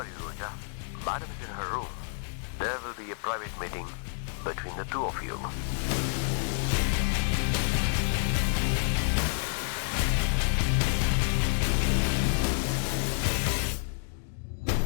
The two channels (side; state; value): right; silent; digital silence